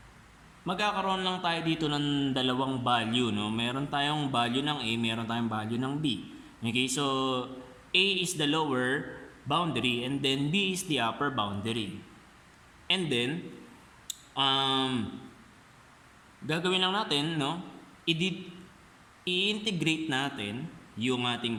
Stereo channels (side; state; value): both; identical; correlation 1.00